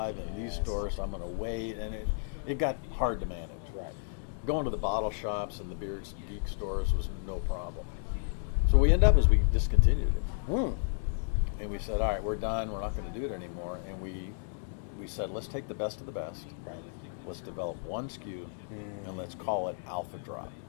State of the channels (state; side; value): silent; right; digital silence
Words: in these stores, so I'm going to wait, and it got hard to manage. Right. Going to the bottle shops and the beer geek stores was no problem. So what we ended up is we discontinued it. And we said, all right, we're done. We're not going to do it anymore. And we said, let's take the best of the best. Right. Let's develop one SKU, and let's call it Alpha Drop.